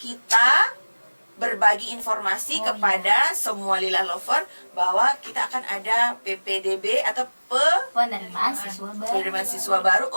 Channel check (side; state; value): both; inverted; correlation -1.00